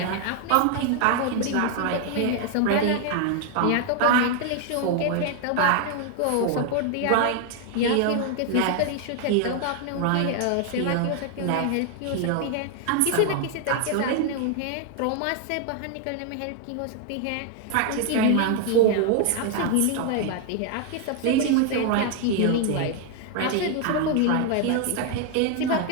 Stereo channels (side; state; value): both; different; correlation 0.00